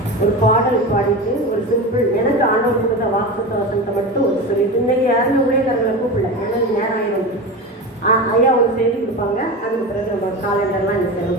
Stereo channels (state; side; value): normal; both; correlation 0.25